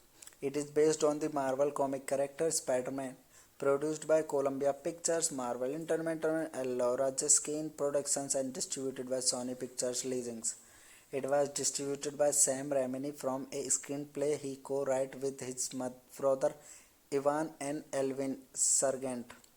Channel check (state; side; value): identical; both; correlation 1.00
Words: It is based on the Marvel comic character Spider-Man, produced by Columbia Pictures, Marvel Entertainment, and Laura Jiskin Productions, and distributed by Sony Pictures Licensing. It was distributed by Sam Raimi from a screenplay he co-wrote with his brother Ivan and Elvin Sargent.